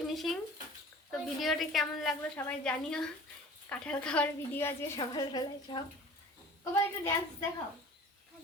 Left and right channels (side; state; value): both; normal; correlation 0.43